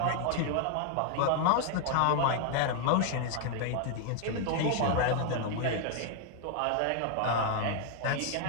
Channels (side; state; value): both; different; correlation 0.00